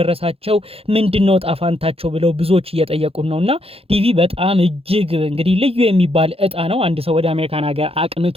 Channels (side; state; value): left; late; 0.28 ms